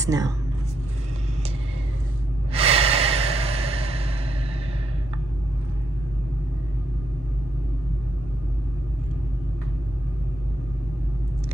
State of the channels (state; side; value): normal; both; correlation 0.79